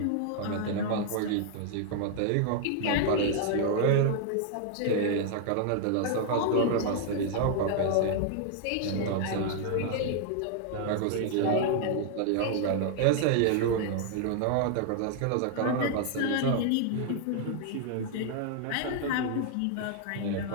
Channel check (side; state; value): both; different; correlation 0.00